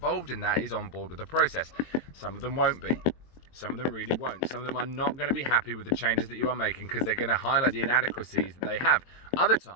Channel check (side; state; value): right; late; 22 ms